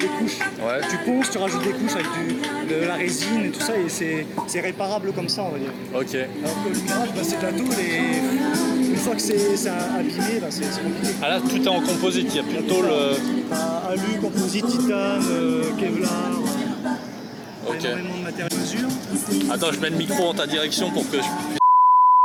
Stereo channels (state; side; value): identical; both; correlation 1.00